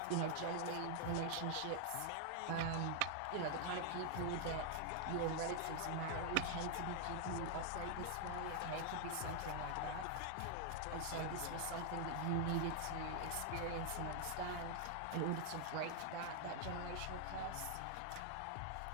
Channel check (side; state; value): both; different; correlation 0.00